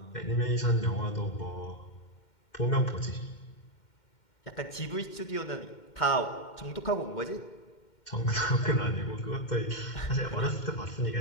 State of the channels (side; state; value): right; late; 2.1 ms